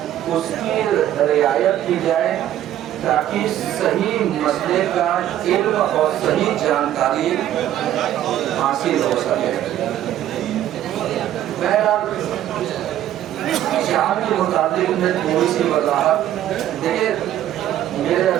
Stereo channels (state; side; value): quieter; left; 12.1 dB